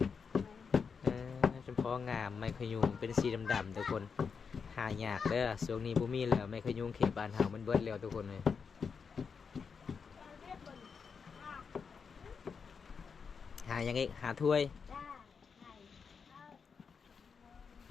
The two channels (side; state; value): right; quieter; 5.8 dB